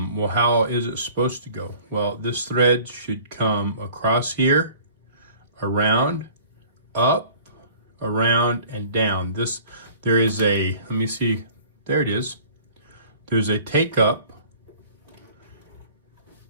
how is it supposed to go? Well, this thread should come across here, around, up, around, and down. There is a, let me see, there it is. There's a take up,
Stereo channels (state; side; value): inverted; both; correlation -0.49